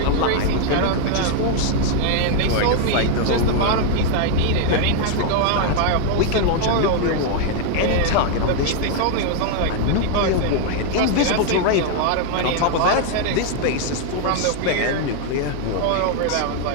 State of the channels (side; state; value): both; different; correlation 0.00